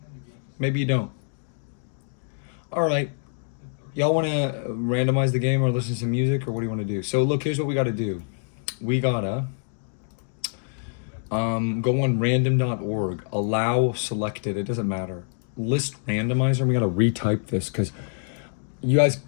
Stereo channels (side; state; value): right; silent; digital silence